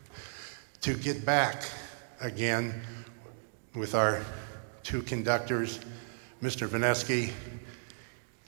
to get back again with our two conductors, Mr. Vineski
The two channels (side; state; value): left; silent; digital silence